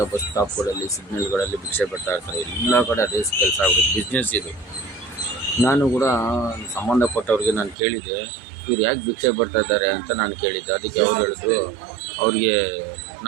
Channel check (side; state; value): left; drops out; at 7.8 s